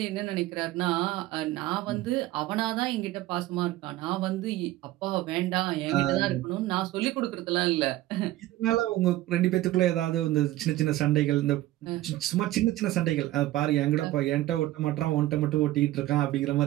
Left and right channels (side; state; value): left; quieter; 15.9 dB